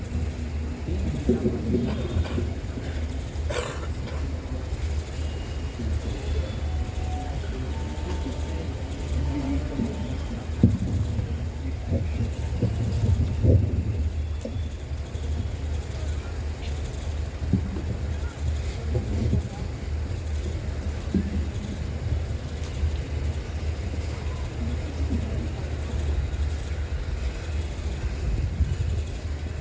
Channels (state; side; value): identical; both; correlation 1.00